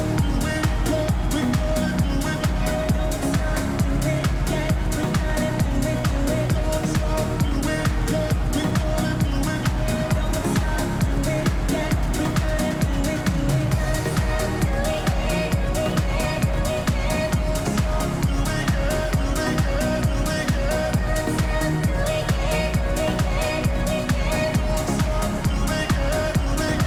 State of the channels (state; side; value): identical; both; correlation 1.00